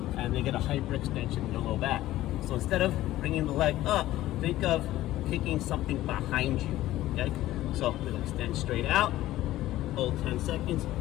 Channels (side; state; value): right; quieter; 15.2 dB